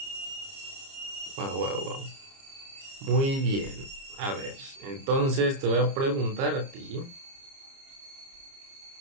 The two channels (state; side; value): late; left; 30 ms